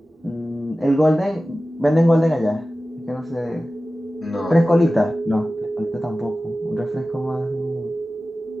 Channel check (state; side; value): normal; both; correlation 0.95